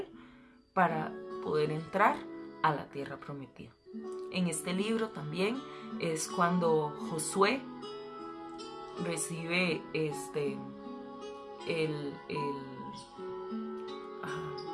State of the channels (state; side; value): identical; both; correlation 1.00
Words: para poder entrar a la tierra prometida. En este libro también es cuando Josué recibe